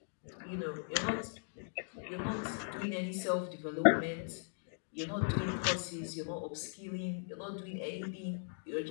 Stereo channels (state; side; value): silent; right; digital silence